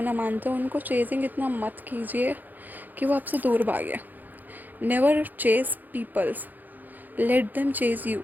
मानते हो, उनको चेजिंग इतना मत कीजिए कि वो आपसे दूर भागे। Never chase peoples, let them chase you.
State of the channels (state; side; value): late; left; 0.085 ms